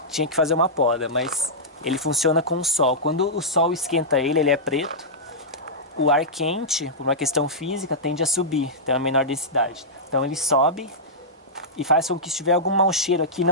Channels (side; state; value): both; normal; correlation -0.11